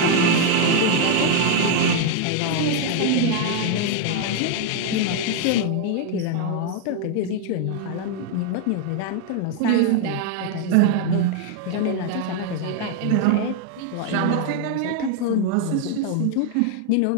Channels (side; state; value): both; different; correlation 0.00